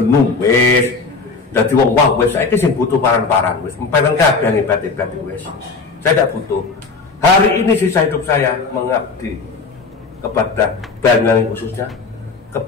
wis, dadi wong wah wis saiki sing butuh paran-paran wis empenan kabeh hebat-hebat wis. Saya tidak butuh. Hari ini sisa hidup saya mengabdi kepada Banyuwangi khususnya,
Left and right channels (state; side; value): quieter; right; 4.3 dB